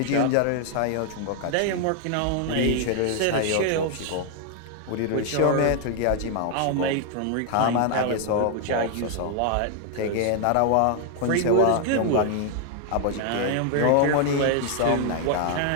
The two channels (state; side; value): different; both; correlation 0.00